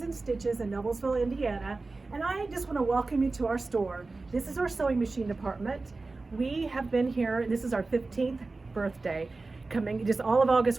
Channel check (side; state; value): left; quieter; 3.6 dB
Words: in Stitches in Noblesville, Indiana, and I just want to welcome you to our store. This is our sewing machine department. We have been here, this is our 15th birthday. Coming, just all of August